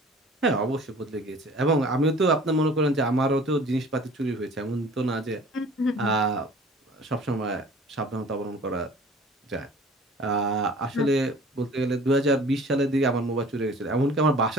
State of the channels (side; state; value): both; normal; correlation 0.47